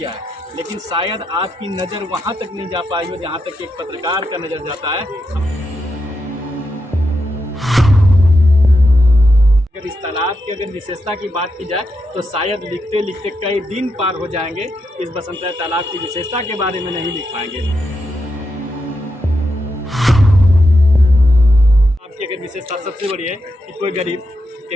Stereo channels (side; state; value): both; normal; correlation 0.85